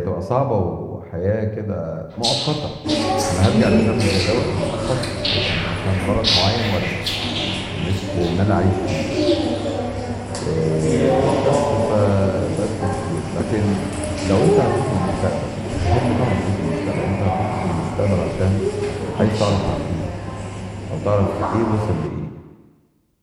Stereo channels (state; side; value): identical; both; correlation 1.00